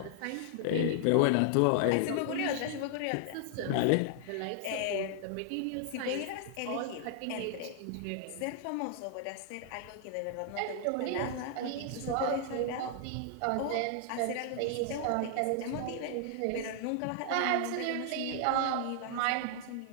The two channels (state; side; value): different; both; correlation -0.01